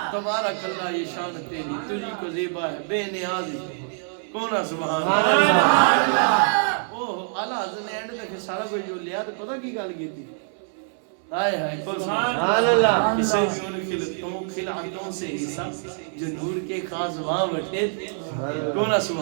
تبارک اللہ یہ شان تیری تجھی کو زیبا ہے بے نیازی کون سبحان اللہ. اوہ اعلیٰ حضرت نے اینڈ تک سارا کوئی جو لیا تو پتہ کی گل کی تھی. ہائے ہائے کون سبحان اللہ. اسے بھی ان خلعتوں سے حصہ جو نور کے خاص وہاں بٹھے تھے کون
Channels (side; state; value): left; silent; 62 dB below the other